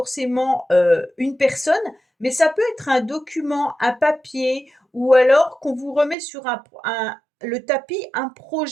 une personne, mais ça peut être un document, un papier, ou alors qu'on vous remet sur le tapis un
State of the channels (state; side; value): drops out; left; at 6.2 s